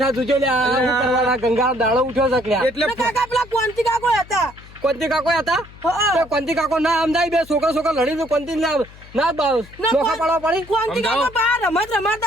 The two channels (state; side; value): noise; left; hum, 21 dB below the sound